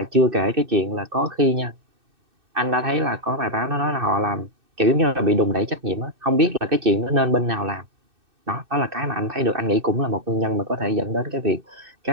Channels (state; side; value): late; left; 2.6 ms